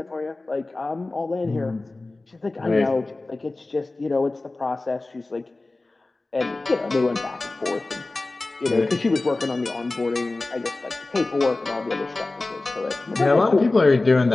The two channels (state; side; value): quieter; right; 3.1 dB